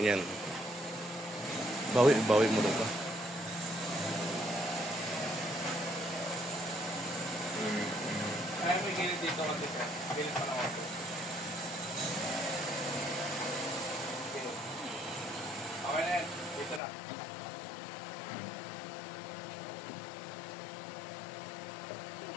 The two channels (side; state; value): right; drops out; at 16.8 s